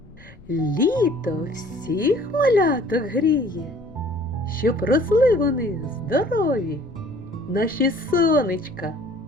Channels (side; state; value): left; noise; rumble, 22 dB below the sound